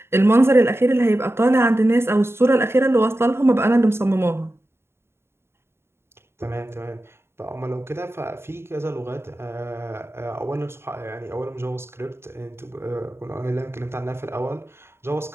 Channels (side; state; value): left; late; 0.12 ms